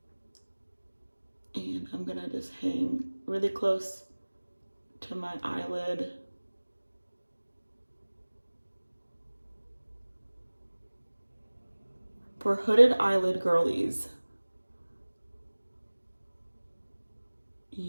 And I'm gonna just hang really close to my eyelid. For hooded eyelid girlies,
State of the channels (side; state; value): both; inverted; correlation -1.00